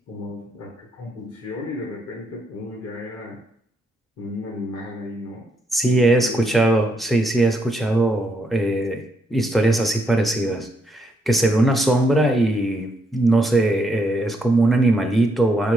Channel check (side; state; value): both; normal; correlation 0.77